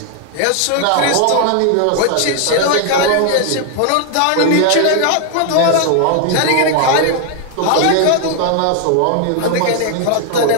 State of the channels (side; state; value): both; different; correlation 0.00